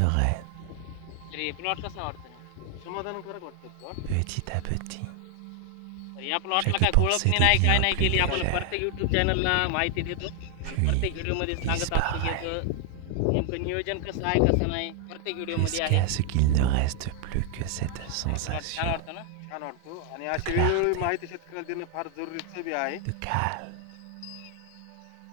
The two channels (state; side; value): different; both; correlation 0.00